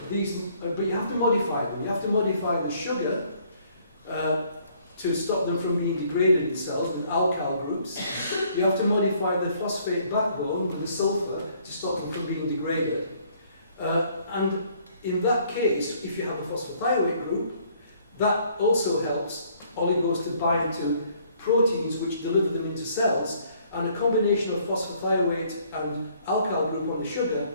But you have to modify them. You have to modify the sugar to stop them from being degraded in cells with alkyl groups. You have to modify the phosphate backbone with the sulfur to stop them from being degraded. And in that case, if you have a phosphorothioate group, that also helps oligos to bind to proteins which deliver them into cells, and a combination of phosphothioate and alkyl group on the sugar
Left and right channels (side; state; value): both; inverted; correlation -0.62